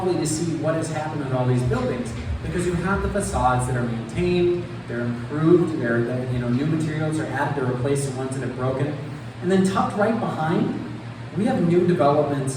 to see what has happened with all these buildings, because you have the facades that are maintained, they're improved, new materials are added to replace the ones that have broken. And then tucked right behind, we have new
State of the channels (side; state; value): both; identical; correlation 1.00